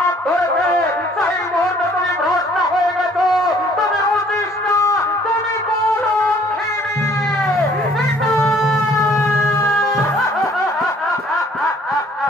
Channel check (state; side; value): normal; both; correlation 0.58